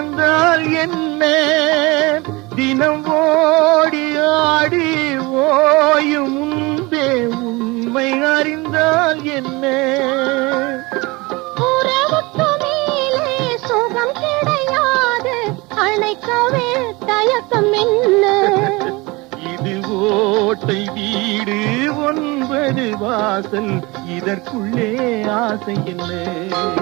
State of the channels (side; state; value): left; quieter; 24.2 dB